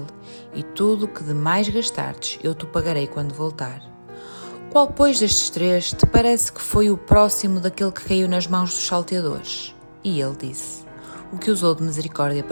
e tudo o que demais gastardes, eu te pagarei quando voltar. Qual, pois, destes 3 te parece que foi o próximo daquele que caiu nas mãos dos salteadores? E ele disse: O que usou de misericórdia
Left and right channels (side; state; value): both; inverted; correlation -1.00